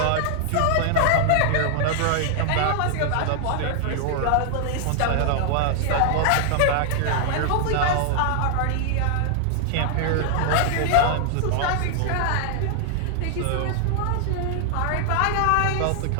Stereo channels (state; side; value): different; both; correlation 0.00